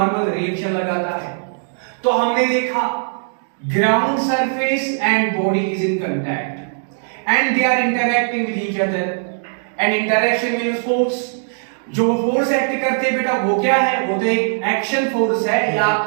रिएक्शन लगाता है। तो हमने देखा ground surface and body is in contact and they are interacting with each other and interaction means force। जो फोर्स एक्ट करते हैं बेटा वो क्या है? वो तो एक एक्शन फोर्स है या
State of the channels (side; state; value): left; silent; digital silence